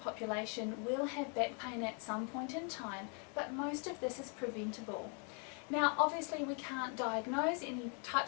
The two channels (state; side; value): quieter; right; 39.0 dB